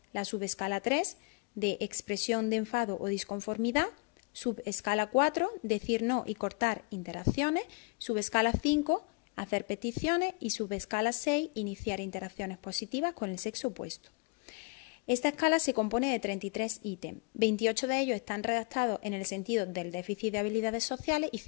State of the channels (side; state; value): right; quieter; 31.1 dB